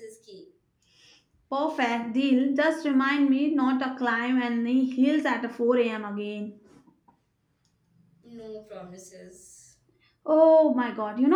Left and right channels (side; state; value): both; identical; correlation 1.00